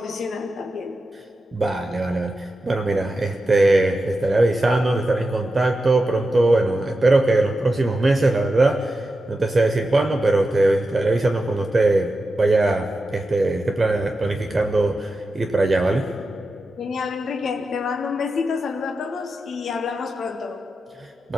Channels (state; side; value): normal; both; correlation 0.90